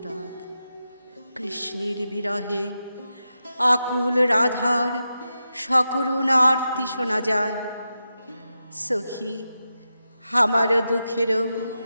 কৃষ্ণের বিরহে আকুল রাধার সকরুণ আরতি শোনা যায়। সখী আমার দুঃখেরও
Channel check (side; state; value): both; inverted; correlation -0.89